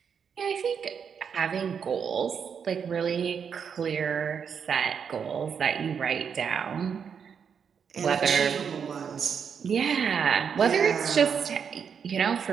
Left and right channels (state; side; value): quieter; left; 7.0 dB